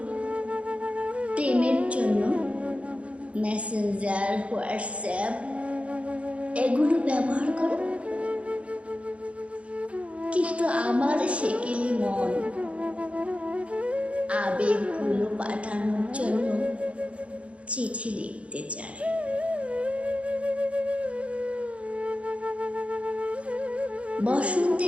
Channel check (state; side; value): late; left; 0.062 ms